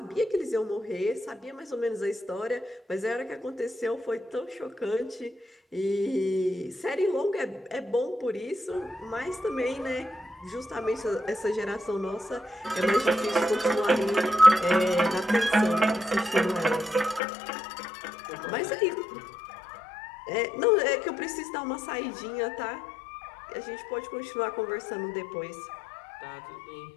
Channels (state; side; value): drops out; right; at 17.2 s